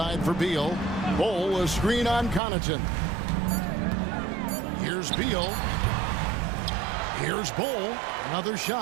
for Beal. Bol, a screen on Connaughton. Here's Beal. Here's Bol. Another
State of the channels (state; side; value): drops out; left; at 2.4 s